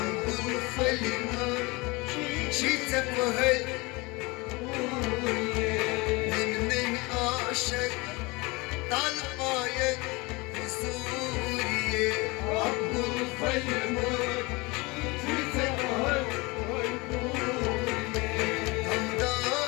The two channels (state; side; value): quieter; right; 25.2 dB